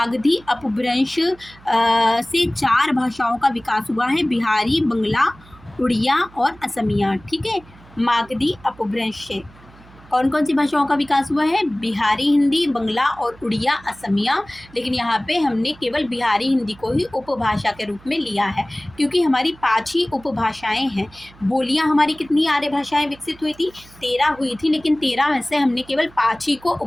अपभ्रंश से 4 भाषाओं का विकास हुआ है, बिहारी, बंगला, उड़िया और असमिया, ठीक है, मागधी अपभ्रंश से। कौन कौन सी भाषाओं का विकास हुआ है? बिहारी हिंदी, बंगला और उड़िया, असमिया। लेकिन यहाँ पे हमने केवल बिहारी हिंदी को ही उपभाषा के रूप में लिया है, क्योंकि हमारी 5 ही उपभाषाएं हैं। बोलियाँ हमारी कितनी आर्य भाषाएं विकसित हुई थी? 13 हुई थी, लेकिन 13 में से हमने केवल 5 ही को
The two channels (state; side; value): noise; right; hum, 24 dB below the sound